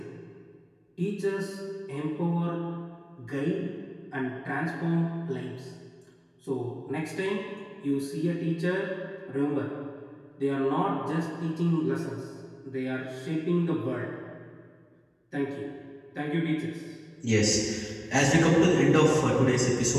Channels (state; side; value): identical; both; correlation 1.00